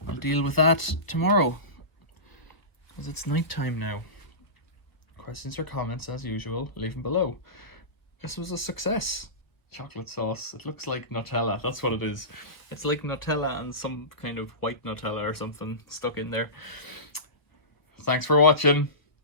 I'll deal with that tomorrow, because it's night time now. Questions or comments, as usual, leave them below. This was a success. Chocolate sauce. It looks like Nutella. That's what it is. It's like Nutella and some kind of white Nutella or something stuck in there. Thanks for watching.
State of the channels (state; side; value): late; right; 1.3 ms